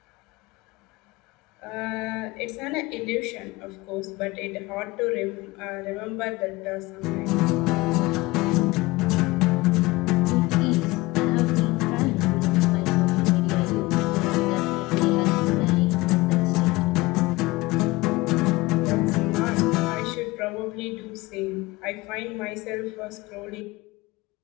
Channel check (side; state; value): right; quieter; 21.1 dB